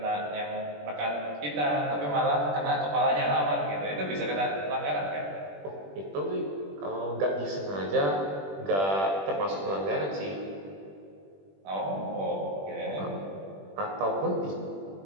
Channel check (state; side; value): late; left; 21 ms